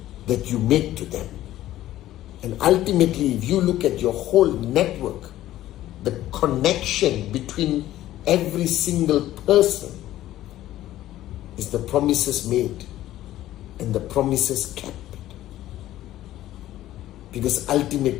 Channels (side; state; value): right; quieter; 14.1 dB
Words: that you make to them. And ultimately, if you look at your whole network, the connection between every single person is the promises made and the promises kept. Because